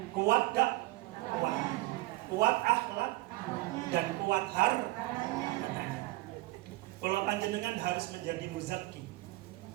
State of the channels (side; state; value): left; quieter; 19.8 dB